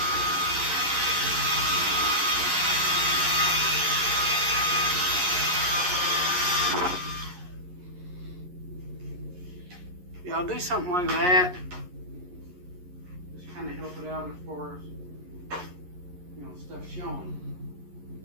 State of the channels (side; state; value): left; late; 11 ms